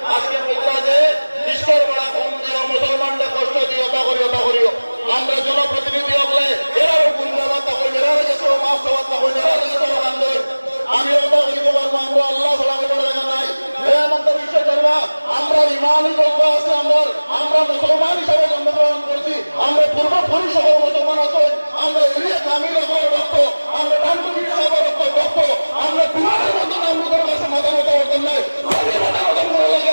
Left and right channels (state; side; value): inverted; both; correlation -1.00